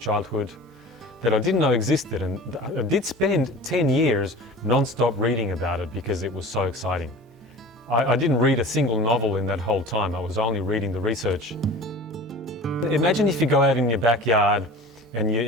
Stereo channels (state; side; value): normal; both; correlation 0.39